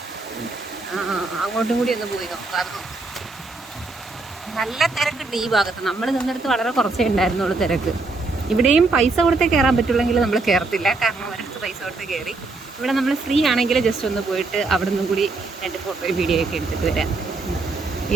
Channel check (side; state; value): left; quieter; 3.5 dB